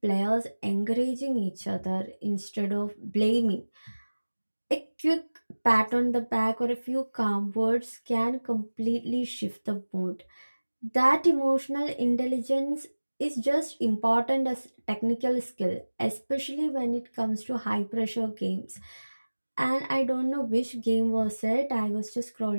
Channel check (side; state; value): both; inverted; correlation -1.00